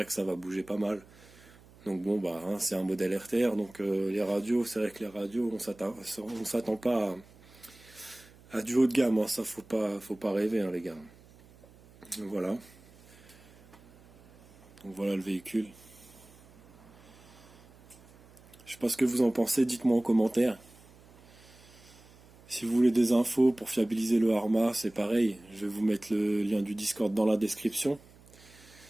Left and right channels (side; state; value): right; noise; hum, 24 dB below the sound